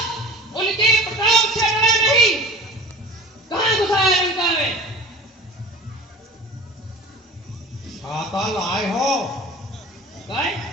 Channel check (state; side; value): normal; both; correlation 0.39